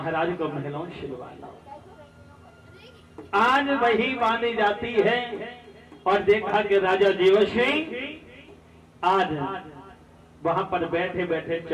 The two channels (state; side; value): identical; both; correlation 1.00